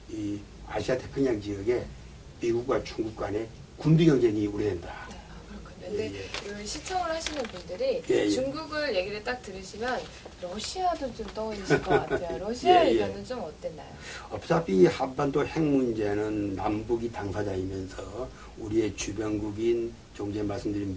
이 아시아 태평양 지역에 미국과 중국 간의 군비 경쟁이 우려된다. 근데 시청을 하시는 분들이 중국을 얘기를 딱 들으시면 러시아도 좀 떠오르실 것 같아요. 러시아 의견은 좀 어땠나요? 어차피 한반도 핵 문제는 남북이 당사자이면서 우리의 주변국인 좀 전에 말씀드린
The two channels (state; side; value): identical; both; correlation 1.00